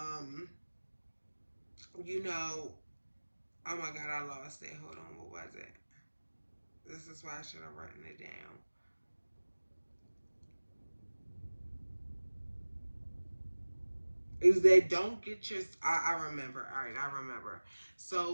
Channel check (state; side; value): inverted; both; correlation -1.00